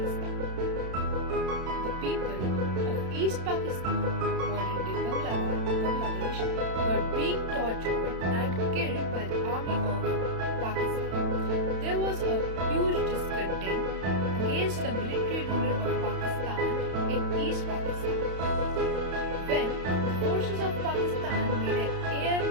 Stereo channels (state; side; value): late; left; 31 ms